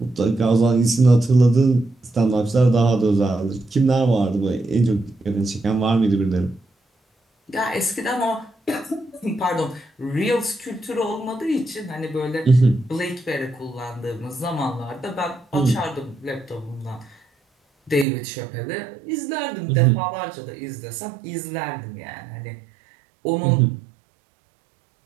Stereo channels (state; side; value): drops out; left; at 18.1 s